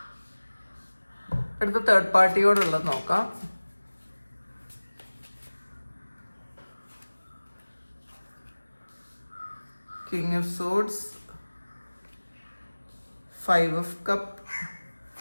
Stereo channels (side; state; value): both; inverted; correlation -1.00